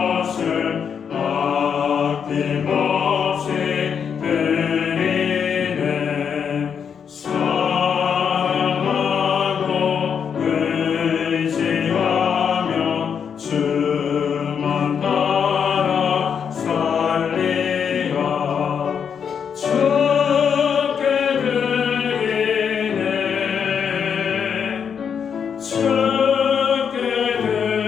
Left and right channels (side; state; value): right; quieter; 7.2 dB